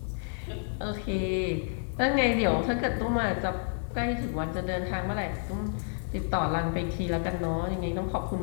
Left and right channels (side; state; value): right; silent; digital silence